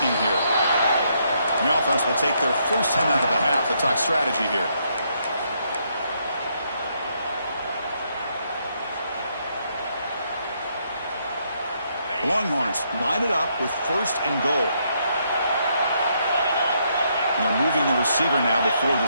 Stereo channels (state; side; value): inverted; both; correlation -0.75